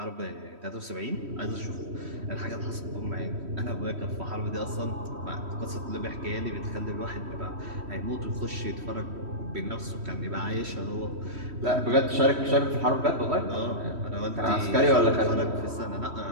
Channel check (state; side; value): late; left; 3.1 ms